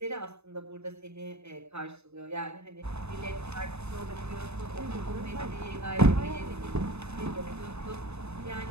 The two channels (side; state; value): left; late; 0.80 ms